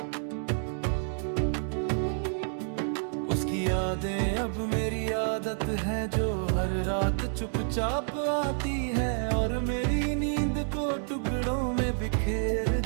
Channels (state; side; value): silent; left; digital silence